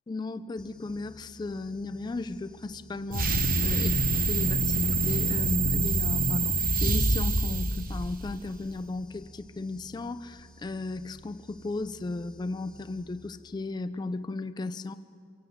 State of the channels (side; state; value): both; normal; correlation 0.73